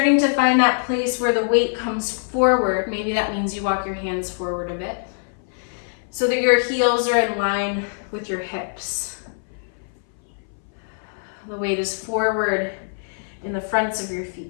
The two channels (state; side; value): silent; right; 61 dB below the other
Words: to find that place where the weight comes forward. Maybe that means you walk your hands forward a bit so that your heels are in line with your hips. The weight is forward in the fronts of your